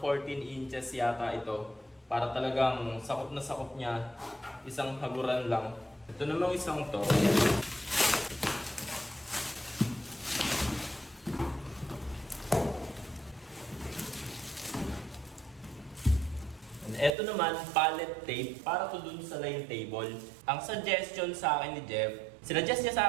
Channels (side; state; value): left; drops out; at 17.2 s